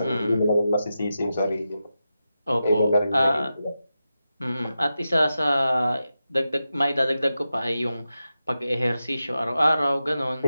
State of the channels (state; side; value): inverted; both; correlation -0.90